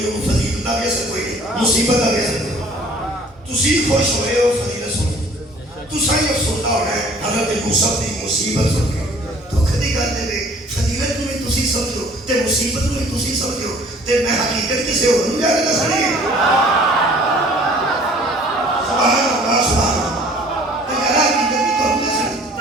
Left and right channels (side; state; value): both; normal; correlation 0.53